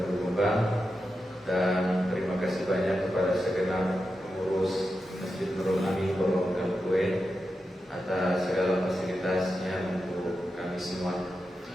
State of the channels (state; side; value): normal; both; correlation 0.89